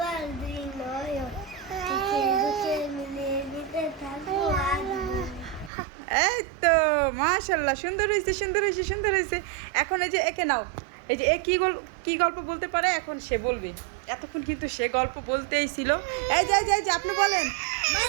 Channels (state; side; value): drops out; left; at 5.7 s